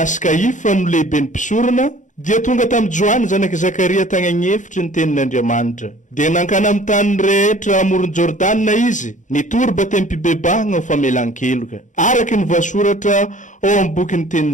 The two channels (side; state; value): right; late; 0.36 ms